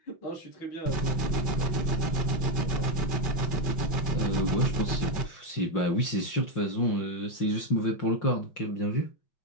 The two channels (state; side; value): late; right; 5.7 ms